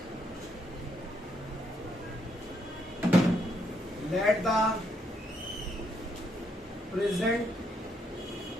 let the present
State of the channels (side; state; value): both; normal; correlation 0.75